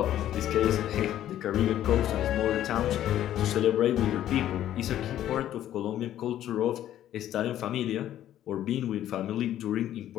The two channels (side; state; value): right; quieter; 12.0 dB